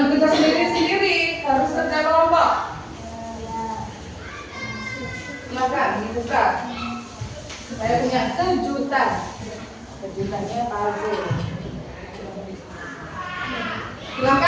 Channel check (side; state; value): both; identical; correlation 1.00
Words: bekerja sendiri-sendiri, harus kerja kelompok. Silakan dibuka. Saya punya kejutan. Kejutannya puzzle.